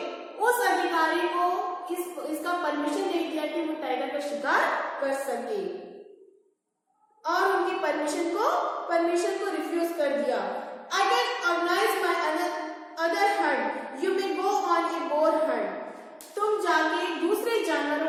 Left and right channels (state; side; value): identical; both; correlation 1.00